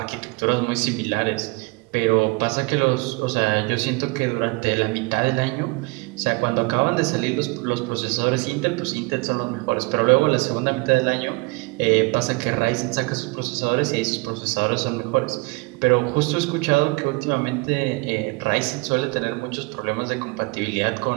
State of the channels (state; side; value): quieter; left; 26.8 dB